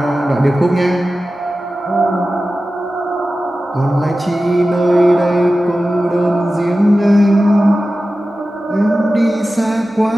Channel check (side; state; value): both; normal; correlation 0.94